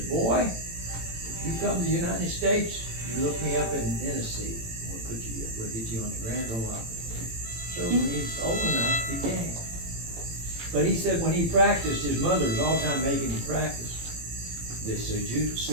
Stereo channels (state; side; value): late; left; 18 ms